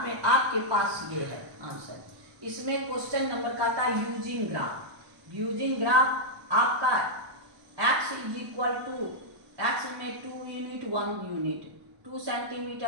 में आपके पास ये है आंसर। इसमें क्वेश्चन नंबर का था यूजिंग ग्राफ आपका x x में 2 यूनिट 1 यूनिट, 2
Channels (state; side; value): late; left; 1.0 ms